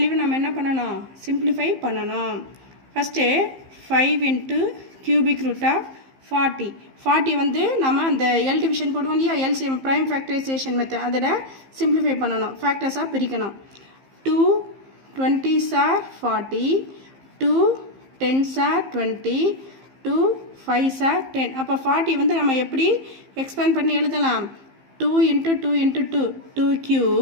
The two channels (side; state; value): left; late; 15 ms